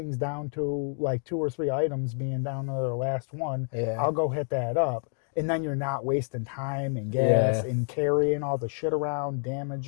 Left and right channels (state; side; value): silent; right; 59 dB below the other